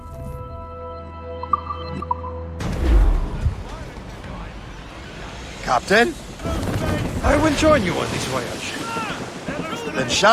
Captain? I will join you on this voyage. Then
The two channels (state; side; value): identical; both; correlation 1.00